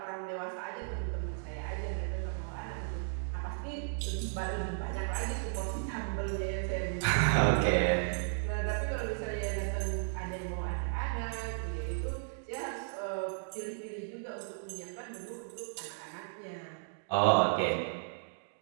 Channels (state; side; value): silent; left; digital silence